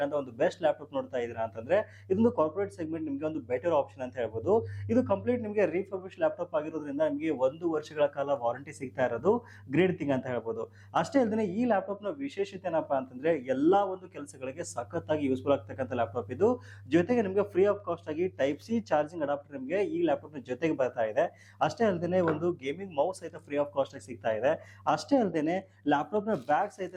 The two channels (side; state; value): both; identical; correlation 1.00